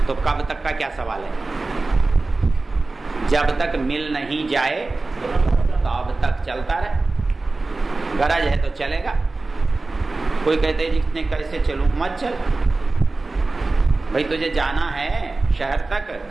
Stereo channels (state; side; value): quieter; left; 3.4 dB